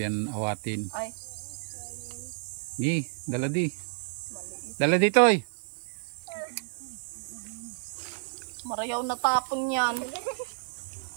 awatin. Ay. Gi, dala di. Dala dito eh. Marayaw na tapon yan.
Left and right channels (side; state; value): left; silent; digital silence